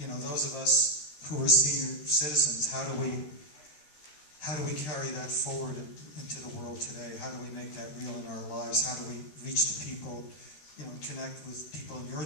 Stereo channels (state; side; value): late; right; 13 ms